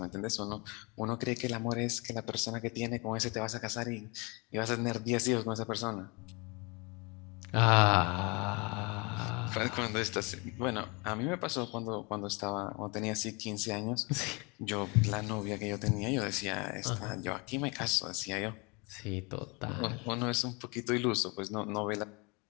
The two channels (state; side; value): quieter; right; 29.0 dB